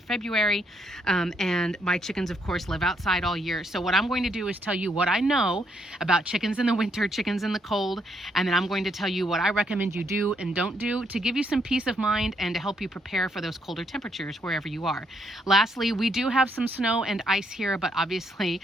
and my chickens of course live outside all year. So what I'm going to do is tell you what I know about chickens in the winter, chickens in the cold, and then I'm going to tell you what I recommend you do and don't do to give you some peace of mind and to help you prepare for those colder temperatures wherever you are. Lastly, we do have some snow and ice here, but obviously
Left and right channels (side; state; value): both; normal; correlation 0.74